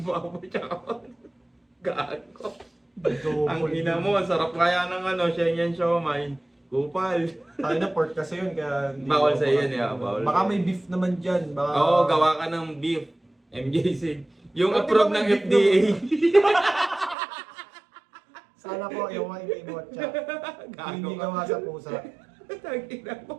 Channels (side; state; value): left; drops out; at 17.2 s